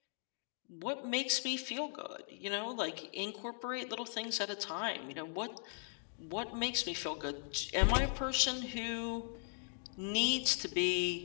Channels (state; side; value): silent; right; digital silence